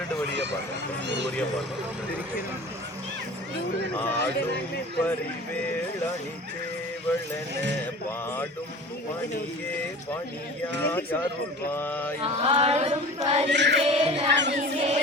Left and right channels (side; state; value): both; normal; correlation 0.39